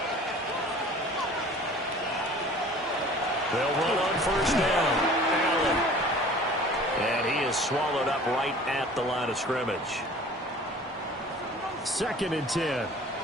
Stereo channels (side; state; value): both; normal; correlation 0.46